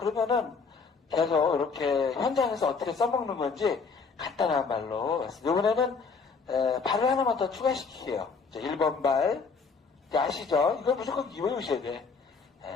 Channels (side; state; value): right; quieter; 5.0 dB